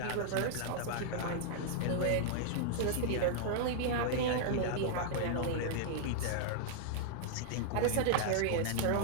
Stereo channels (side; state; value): both; different; correlation -0.01